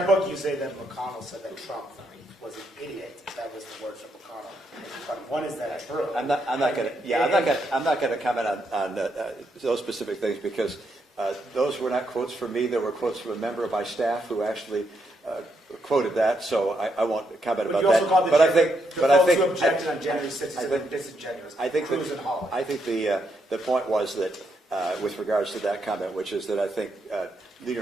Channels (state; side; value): normal; both; correlation 0.79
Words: book, you say that McConnell said that Trump was an idiot. That was the words of McConnell. But one is that true? I'm not going to comment on those specific things because those were not quotes from me. They were quotes from a member of my staff who actually quoted that. So I won't comment about that. But I think who objected on January 6th are disingenuous. Cruz and Hawley. I think the point was that with regards to that comment, which is that I think Leader